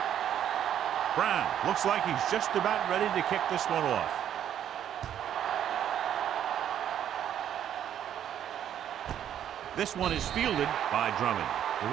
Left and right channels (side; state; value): left; quieter; 10.1 dB